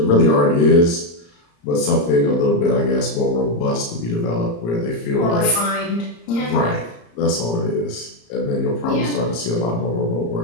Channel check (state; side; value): late; right; 34 ms